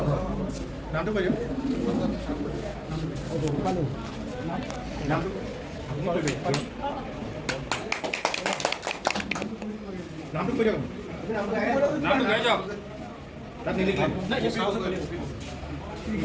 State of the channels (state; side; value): identical; both; correlation 1.00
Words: নামটো কৈ দিয়ক। নামটো কৈ দিয়ক। নামটো কৈ দিয়ক। তাত নিলিখিলে